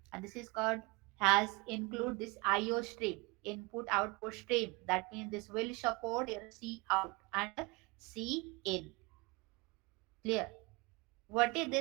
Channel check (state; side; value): quieter; left; 25.5 dB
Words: and this is called has include this IO stream, input output stream. That means this will support your C out and C in. Clear? What is